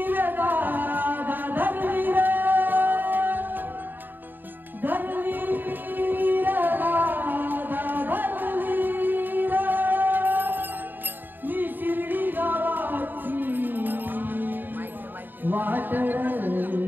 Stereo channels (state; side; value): late; left; 0.091 ms